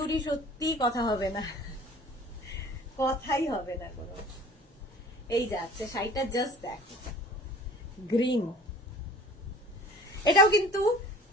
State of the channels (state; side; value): normal; both; correlation 0.45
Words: সত্যি কথা হবে না, কথাই হবে না কোনো। এই যাচ্ছে শাড়িটা, জাস্ট দেখো গ্রিন, এটাও কিন্তু